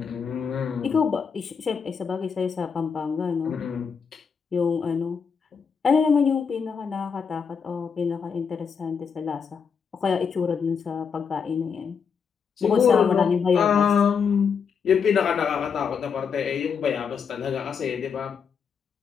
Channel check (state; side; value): quieter; right; 6.3 dB